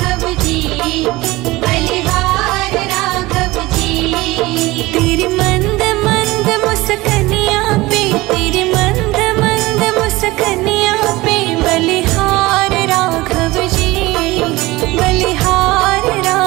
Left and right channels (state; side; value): quieter; left; 20.0 dB